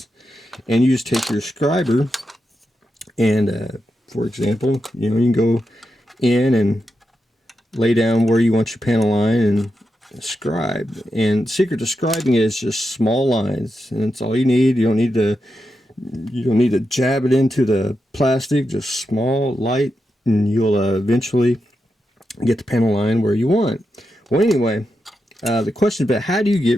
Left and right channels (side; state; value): both; normal; correlation 0.87